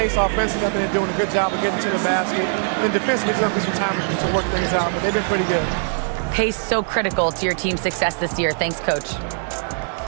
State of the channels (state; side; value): silent; left; digital silence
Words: offensively. I've been doing a good job of getting to the basket. And defensively, it's going to be some time to work things out, but they've been pretty good. Pace so critical to your team's success this year. Thanks, Coach.